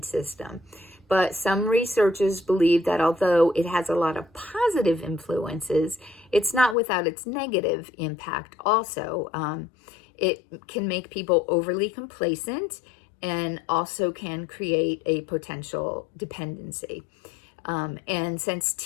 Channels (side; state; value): right; drops out; at 6.8 s